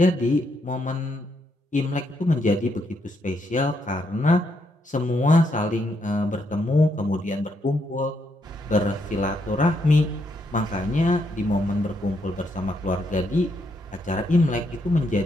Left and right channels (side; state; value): both; normal; correlation 0.77